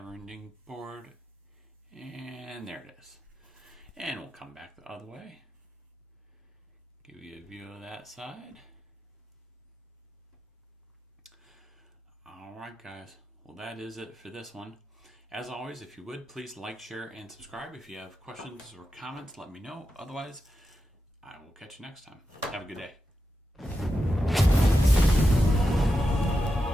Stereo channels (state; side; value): normal; both; correlation 0.89